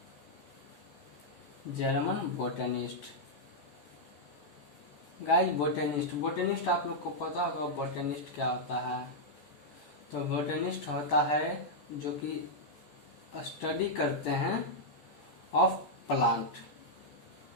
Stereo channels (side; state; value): right; late; 14 ms